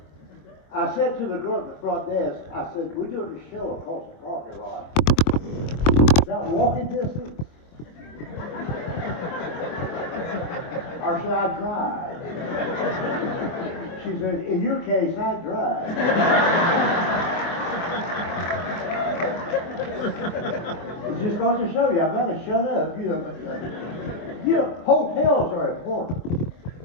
I said to the girl at the front desk, I said, we're doing a show across the parking lot. Is that walking distance? Or should I drive? She said, in your case, I drive. It's just going to show you. I've got to shut up. You know, hotels are important.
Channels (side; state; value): right; late; 24 ms